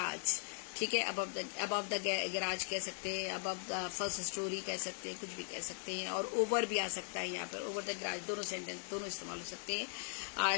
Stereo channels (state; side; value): silent; right; 52 dB below the other